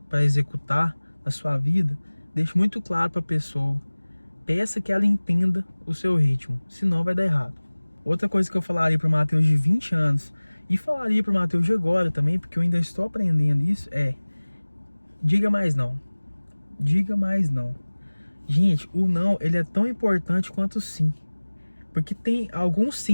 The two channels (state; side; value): inverted; both; correlation -1.00